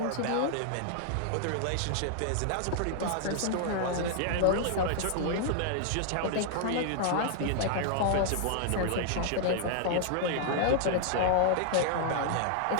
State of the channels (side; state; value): both; different; correlation -0.01